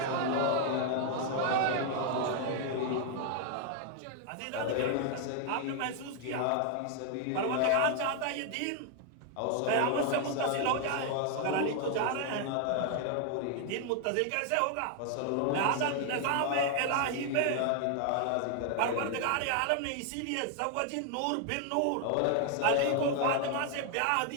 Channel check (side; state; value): both; different; correlation 0.00